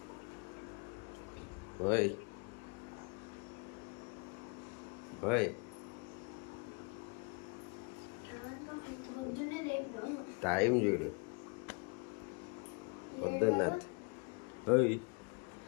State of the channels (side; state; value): right; quieter; 32.4 dB